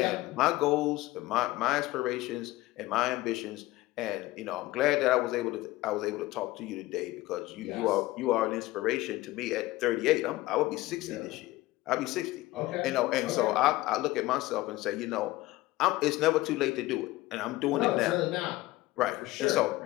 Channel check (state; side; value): quieter; right; 18.4 dB